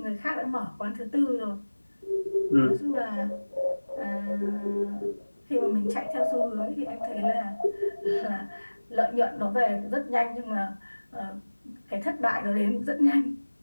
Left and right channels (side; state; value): both; inverted; correlation -1.00